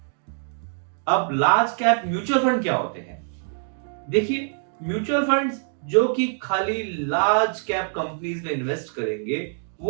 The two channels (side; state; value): left; silent; digital silence